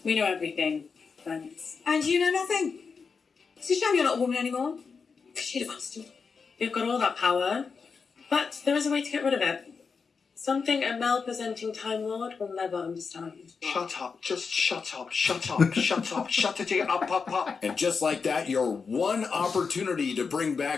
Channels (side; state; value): right; quieter; 5.3 dB